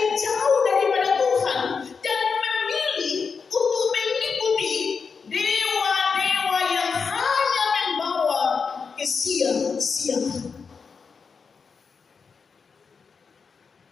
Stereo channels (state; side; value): quieter; right; 5.4 dB